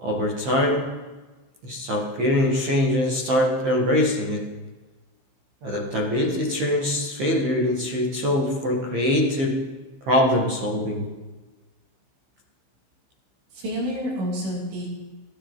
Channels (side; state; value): left; late; 15 ms